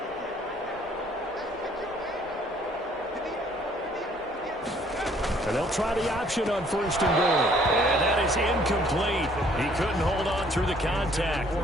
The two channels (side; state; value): both; normal; correlation 0.61